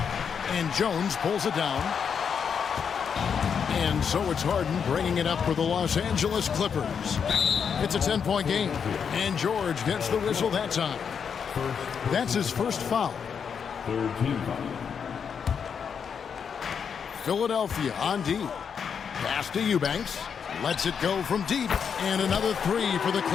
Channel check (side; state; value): right; quieter; 6.9 dB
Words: And Jones pulls it down. And so it's Harden bringing it up for the Los Angeles Clippers. It's a 10-point game. And George gets the whistle that time. That's his first foul. 3rd team foul. Philadelphia on D. Pass to Eubanks. Lets it go from deep. And another 3 for the